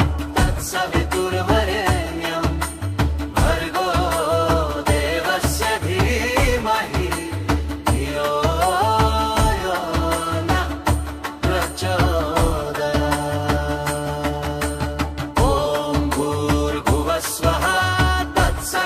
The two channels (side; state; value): both; identical; correlation 1.00